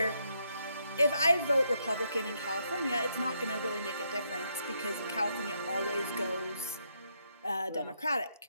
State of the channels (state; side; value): inverted; both; correlation -0.77